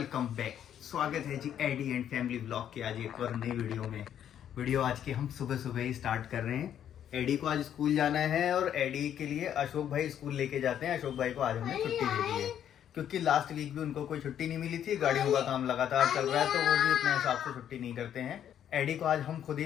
back. स्वागत है जी एडी एंड फैमिली ब्लॉग के आज एक और नई वीडियो आज के हम सुबह सुबह ही स्टार्ट कर रहे हैं। एडी को आज स्कूल जाना है और एडी के लिए अशोक भाई स्कूल लेके जाते हैं। अशोक भाई को आज हमने छुट्टी दे दी है क्योंकि लास्ट वीक भी उनको कोई छुट्टी नहीं मिली थी। गाड़ियों का काम लगातार चल रहा है तो वो भी अपने हिसाब से छुट्टी नहीं करते हैं। एडी को आज हम खुद ही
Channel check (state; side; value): quieter; right; 9.9 dB